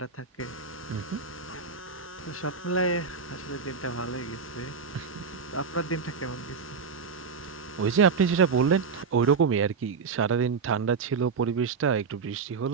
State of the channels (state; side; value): quieter; left; 5.4 dB